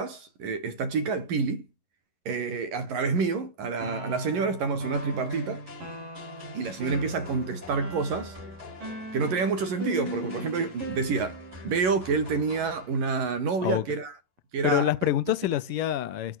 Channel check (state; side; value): late; left; 11 ms